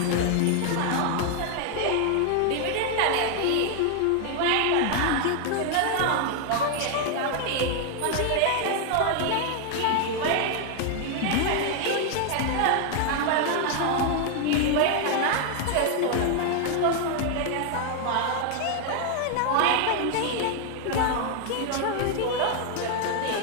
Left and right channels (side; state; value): both; different; correlation 0.00